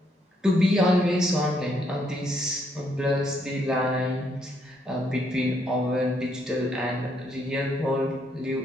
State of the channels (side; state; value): both; normal; correlation 0.73